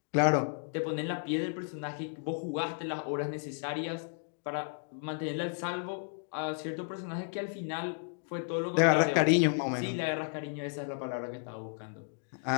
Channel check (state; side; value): silent; right; 56 dB below the other